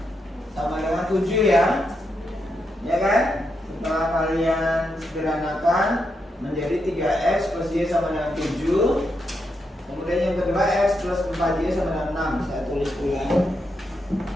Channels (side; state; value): both; normal; correlation 0.83